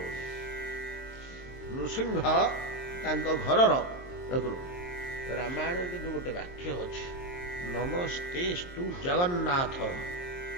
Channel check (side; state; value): right; late; 23 ms